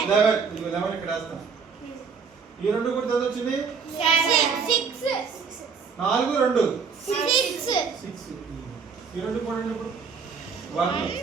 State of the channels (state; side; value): quieter; left; 5.8 dB